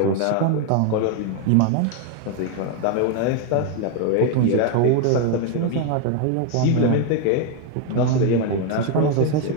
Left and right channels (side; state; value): both; different; correlation 0.01